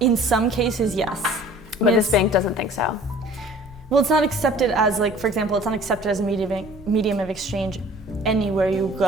some cases, yes. But this bank doesn't think so. Well, it's not accepted as, like, for example, it's not accepted as a medium of exchange anywhere you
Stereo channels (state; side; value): normal; both; correlation 0.49